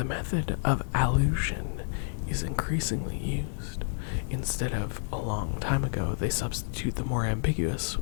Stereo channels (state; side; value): silent; right; digital silence